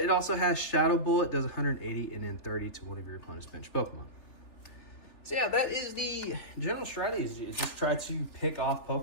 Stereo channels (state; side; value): late; right; 3.4 ms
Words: also has Shadow Bullet, does 180 and then 30 to one of your opponent's bench Pokemon. So yeah, that is the general strategy, is just try to pick off